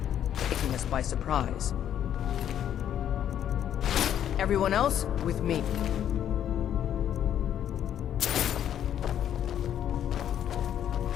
taking us by surprise. Everyone else, with me.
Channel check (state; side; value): quieter; right; 10.2 dB